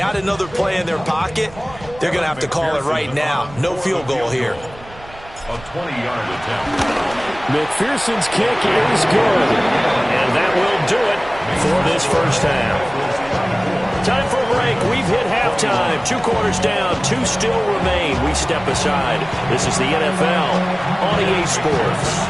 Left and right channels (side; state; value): right; noise; rumble, 19 dB below the sound